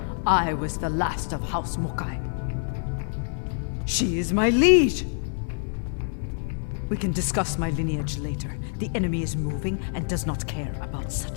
I was the last of House Mokai. She is my liege! We can discuss my lineage later. The enemy is moving and does not care about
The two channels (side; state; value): right; silent; 61 dB below the other